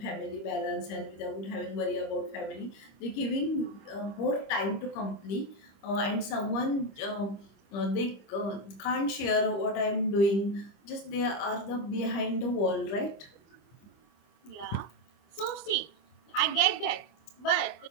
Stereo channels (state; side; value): late; right; 25 ms